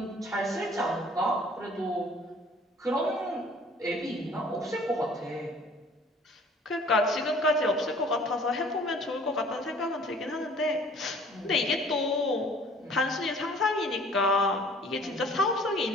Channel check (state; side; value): normal; both; correlation 0.52